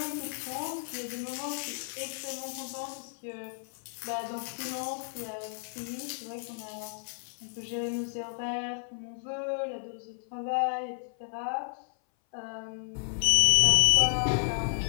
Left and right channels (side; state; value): right; silent; 57 dB below the other